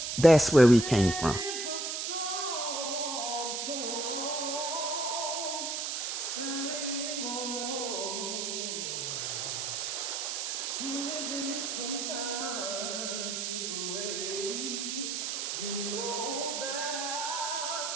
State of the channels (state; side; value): noise; right; hiss, 2 dB below the sound